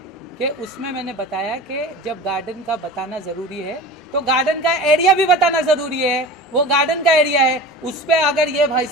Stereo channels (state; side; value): normal; both; correlation 0.35